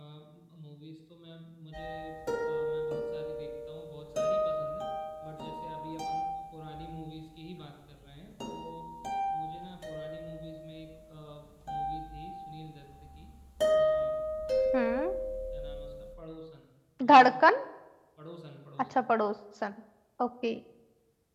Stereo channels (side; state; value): both; identical; correlation 1.00